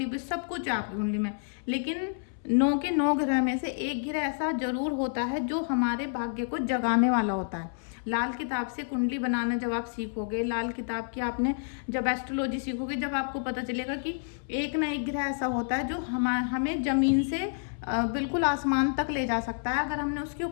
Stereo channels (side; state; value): right; silent; 58 dB below the other